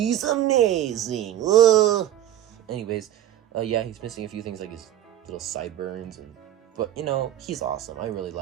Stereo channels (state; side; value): quieter; left; 12.2 dB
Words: amazing! Ugh. Anyways, yeah, he's missing a few things like his little sideburns, but, he's awesome. I really